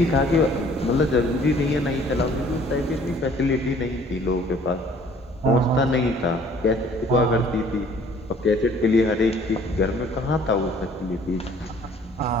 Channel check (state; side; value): normal; both; correlation 0.56